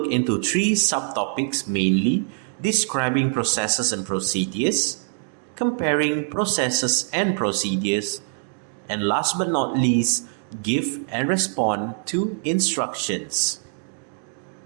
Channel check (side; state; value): left; silent; 58 dB below the other